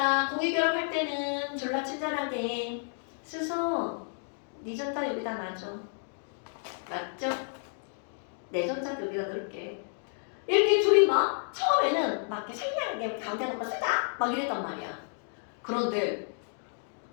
공유결합할 때는 졸라 친절하게 스서 네 전자 여기다 놔줘. 맞죠? 내 전자 여기다 넣을게. 이렇게 둘이 막 처음에는 막 이렇게 생략하게 가운데 놓고 쓰자 막 이랬단 말이야. 그런데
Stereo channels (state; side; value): silent; right; 57 dB below the other